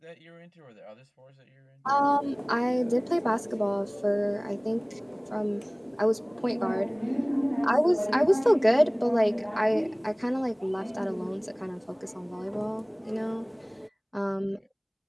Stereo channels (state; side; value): identical; both; correlation 1.00